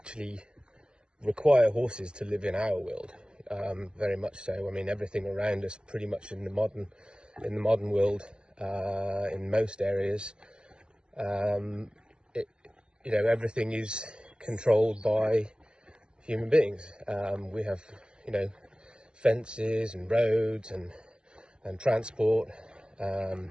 require horses to live in our world, very much so. I mean, everything around us, pretty much in the modern world, in most areas, everything is controlled by human beings. We have, fences and roads and transport,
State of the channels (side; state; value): left; late; 0.049 ms